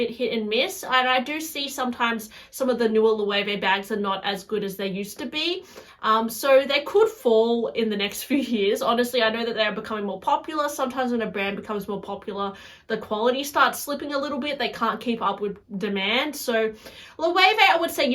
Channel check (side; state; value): both; identical; correlation 1.00